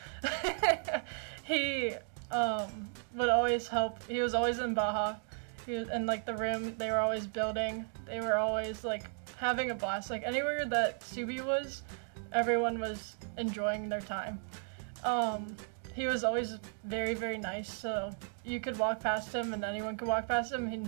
He would always help. He was always in Baja. He was in like the room they were always building. They were always like having a blast. Like anywhere that Subi was, everyone was enjoying their time. He was always very, very nice, so you could walk past him and anyone could walk past him and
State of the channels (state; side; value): silent; left; 55 dB below the other